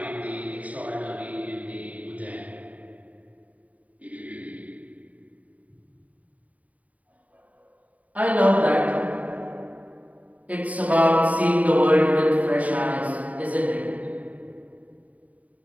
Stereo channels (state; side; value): late; left; 0.070 ms